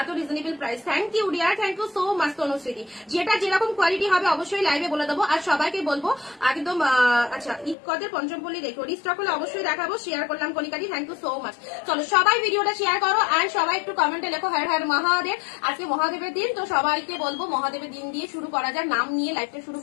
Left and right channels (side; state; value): right; drops out; at 7.8 s